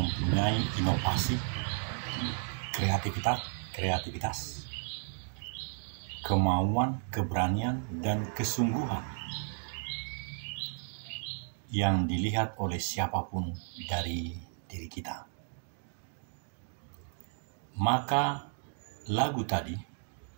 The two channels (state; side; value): silent; left; 55 dB below the other